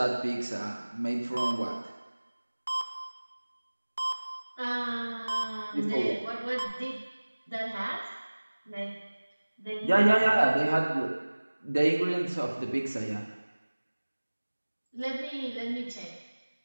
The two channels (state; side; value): inverted; both; correlation -1.00